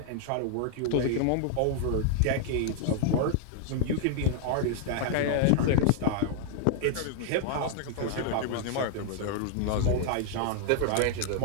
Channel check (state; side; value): different; both; correlation 0.00